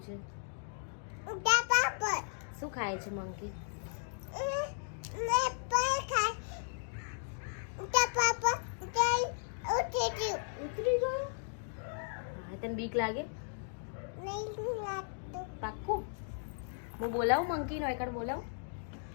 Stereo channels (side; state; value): right; silent; digital silence